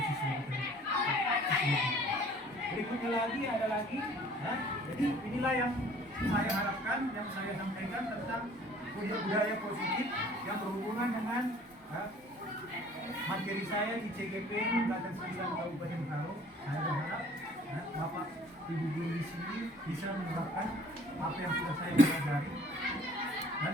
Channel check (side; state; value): both; normal; correlation 0.53